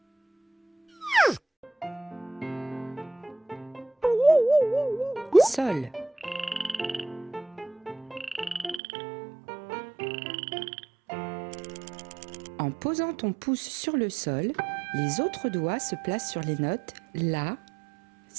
Sol. En posant ton pouce sur le Sol, les autres doigts se placent sur les notes La,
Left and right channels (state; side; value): drops out; left; at 8.8 s